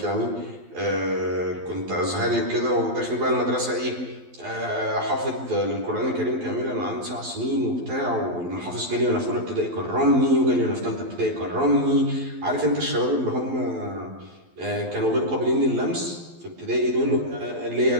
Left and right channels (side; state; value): left; late; 12 ms